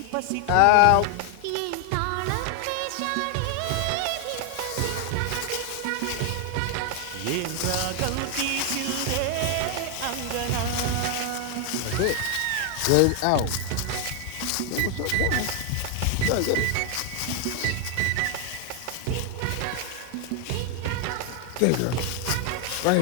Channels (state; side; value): different; both; correlation 0.00